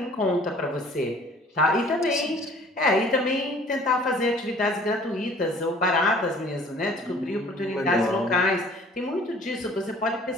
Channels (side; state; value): both; normal; correlation 0.52